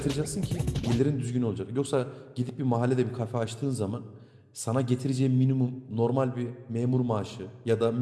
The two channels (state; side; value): identical; both; correlation 1.00